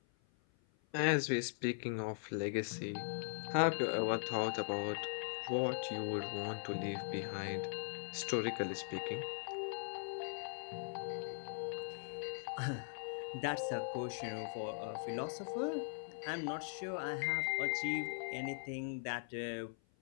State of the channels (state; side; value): silent; right; 51 dB below the other